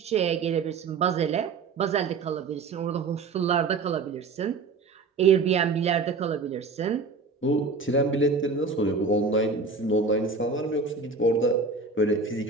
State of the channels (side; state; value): left; quieter; 4.3 dB